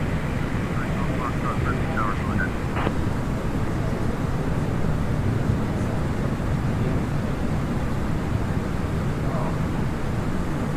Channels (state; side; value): identical; both; correlation 1.00